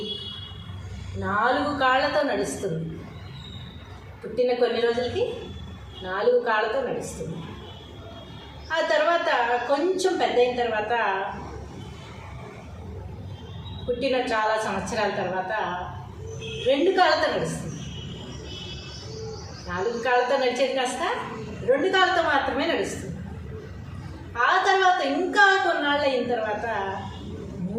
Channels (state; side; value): identical; both; correlation 1.00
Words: 4 కాళ్ళతో నడుస్తుంది. పుట్టిన కొన్ని రోజులకి 4 కాళ్ళతో నడుస్తుంది. ఆ తర్వాత కొంచెం పెద్ద అయిన తర్వాత, పుట్టిన చాలా సంవత్సరాల తర్వాత 2 కాళ్ళతో నడుస్తుంది. 4 కాళ్ళతో నడిచేది కాస్త 2 కాళ్ళతో మాత్రమే నడుస్తుంది. ఆ తర్వాత ఇంకా కొన్నాళ్ళు అయిన తర్వాత